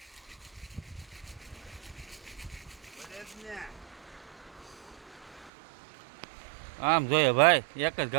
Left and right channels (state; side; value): drops out; left; at 5.5 s